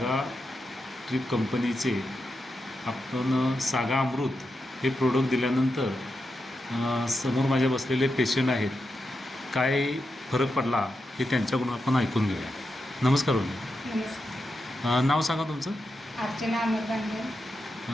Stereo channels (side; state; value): both; normal; correlation 0.87